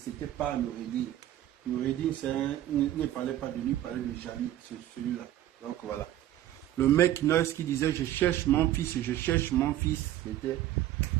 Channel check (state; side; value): quieter; left; 13.0 dB